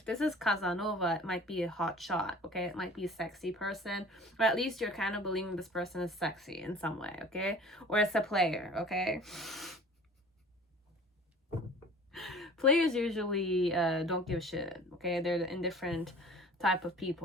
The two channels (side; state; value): both; normal; correlation 0.45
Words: this is Casanova, it might be a hot shot. Okay, it might be a sexy person, or at least you're kind of believing this person is sexy in some way. Okay, or it's a player. Okay, players usually don't give a shit. Okay, they're the indifferent type of